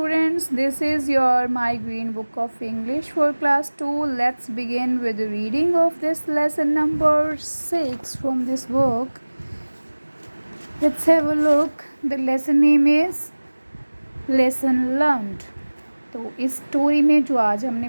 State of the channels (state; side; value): inverted; both; correlation -1.00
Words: This is your My Green Book of English for Class 2. Let's begin with the reading of this lesson number 6 from this book. Let's have a look. The lesson name is Lesson Learned. तो इस story में जो आज हमने